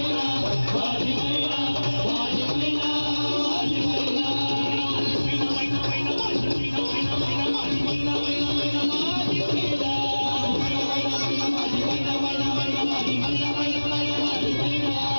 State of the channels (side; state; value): both; inverted; correlation -1.00